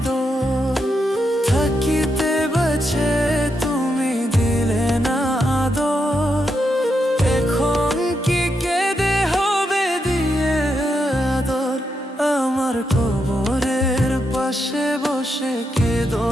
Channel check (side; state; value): both; normal; correlation 0.83